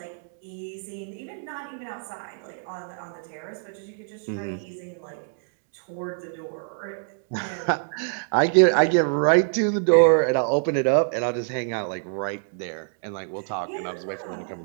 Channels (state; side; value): silent; left; digital silence